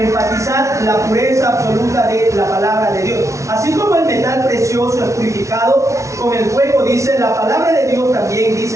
la pureza absoluta de la palabra de Dios. Así como el metal precioso es purificado con el fuego, dice la palabra de Dios también,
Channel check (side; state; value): left; late; 0.14 ms